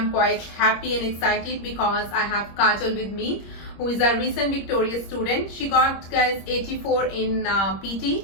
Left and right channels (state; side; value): late; right; 26 ms